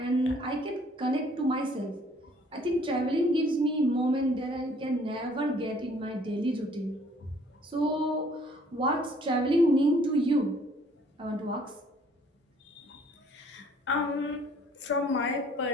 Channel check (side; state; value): both; normal; correlation 0.59